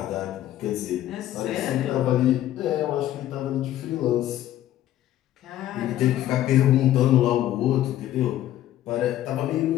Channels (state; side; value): quieter; right; 13.0 dB